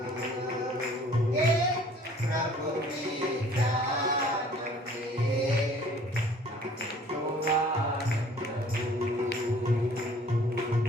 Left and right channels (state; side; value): normal; both; correlation 0.53